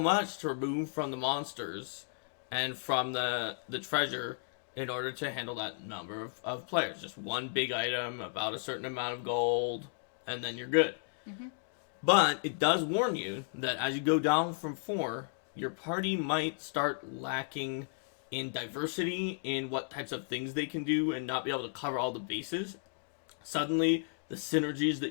to remove from the monsters and from the treasure in order to handle that number of players. Just one big item, about a certain amount of gold, and then you're good. Mm-hmm. But it does warn you that as you go down from 4, your party might start lacking in diversity in what types of things they can do and not be able to cover all the bases. Suddenly, the synergies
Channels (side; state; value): right; silent; digital silence